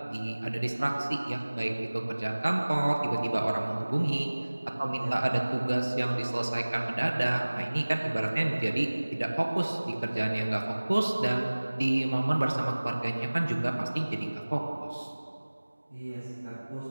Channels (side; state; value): both; inverted; correlation -1.00